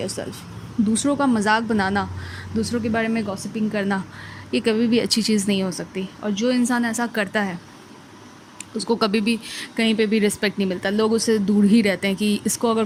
yourself. दूसरों का मजाक बनाना, दूसरों के बारे में गॉसिपिंग करना, ये कभी भी अच्छी चीज़ नहीं हो सकती। और जो इंसान ऐसा करता है उसको कभी भी कहीं पे भी रिस्पेक्ट नहीं मिलता। लोग उससे दूर ही रहते हैं कि इसको अगर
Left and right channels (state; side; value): identical; both; correlation 1.00